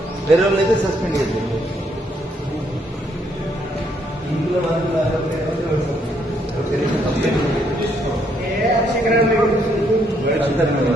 వేరే వాళ్ళు అయితే సస్పెండ్ చేస్తారు. ఇంట్లో అంతా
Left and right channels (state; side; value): normal; both; correlation 0.72